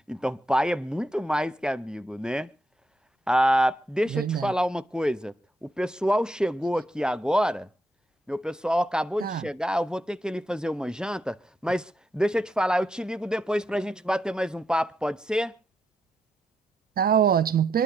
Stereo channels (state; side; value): normal; both; correlation 0.80